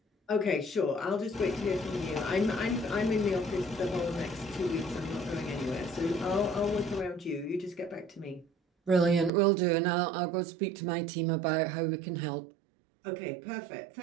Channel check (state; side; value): drops out; left; at 9.3 s